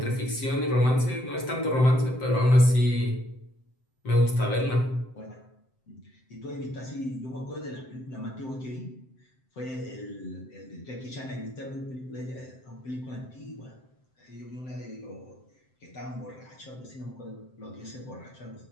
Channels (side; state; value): right; late; 7.8 ms